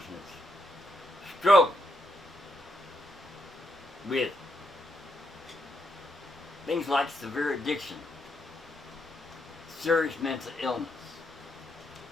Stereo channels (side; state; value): both; normal; correlation 0.79